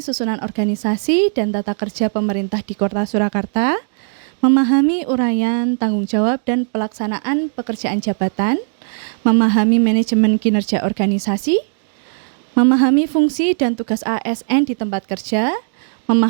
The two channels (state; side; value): silent; left; digital silence